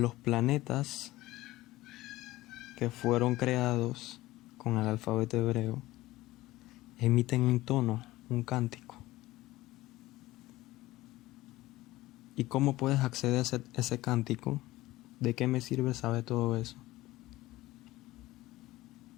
planetas que fueron creados con el alfabeto hebreo emiten un tono, un cántico. ¿Y cómo puedes acceder a ese cántico? ¿De qué me sirve saber todo eso?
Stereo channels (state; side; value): quieter; right; 17.6 dB